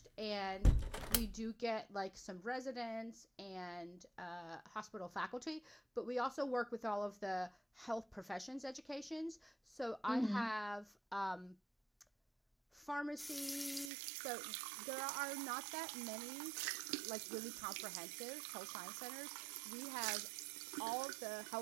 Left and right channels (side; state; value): left; drops out; at 13.9 s